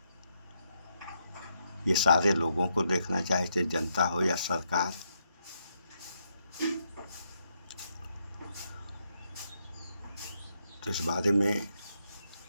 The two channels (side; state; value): both; inverted; correlation -0.79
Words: ये सारे लोगों को देखना चाहिए, चाहे जनता हो या सरकार। तो इस बारे में